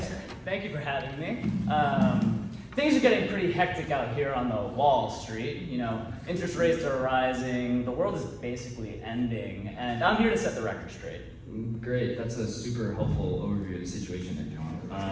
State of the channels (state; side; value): identical; both; correlation 1.00